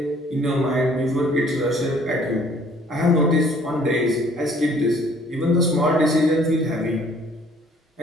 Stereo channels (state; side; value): normal; both; correlation 0.58